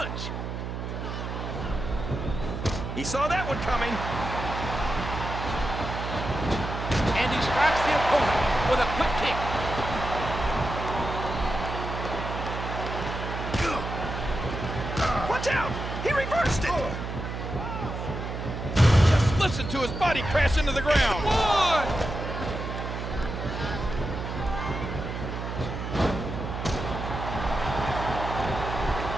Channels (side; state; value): right; noise; hum, 5 dB below the sound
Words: He saw that one coming. And he strikes the opponent with a quick kick. Watch out! He reversed it! Just listen to his body crash into the ground. One!